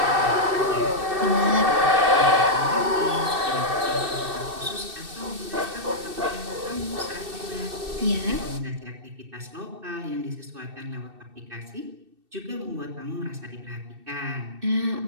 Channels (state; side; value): late; left; 2.6 ms